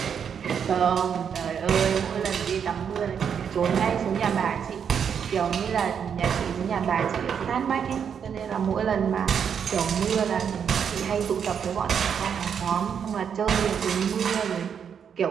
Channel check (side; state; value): left; quieter; 7.5 dB